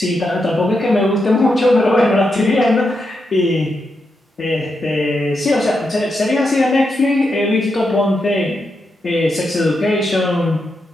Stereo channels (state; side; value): normal; both; correlation 0.85